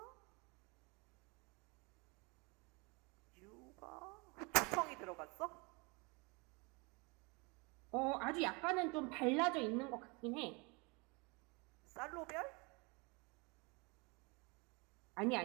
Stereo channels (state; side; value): quieter; left; 28.9 dB